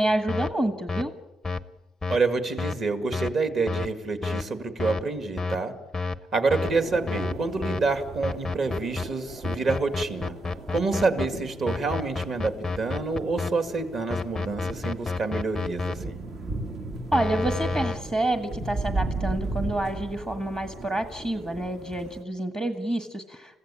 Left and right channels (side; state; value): both; normal; correlation 0.84